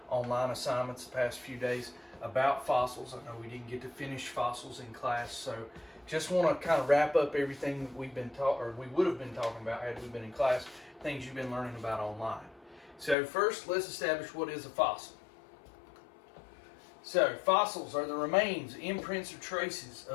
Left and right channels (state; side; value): drops out; right; at 13.2 s